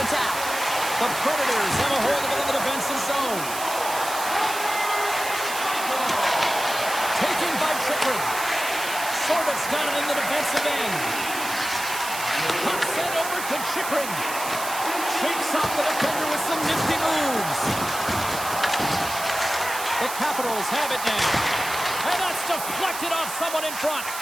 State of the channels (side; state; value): right; noise; hiss, 8 dB below the sound